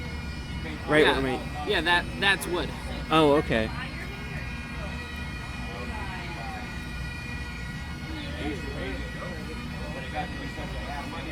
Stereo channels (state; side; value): identical; both; correlation 1.00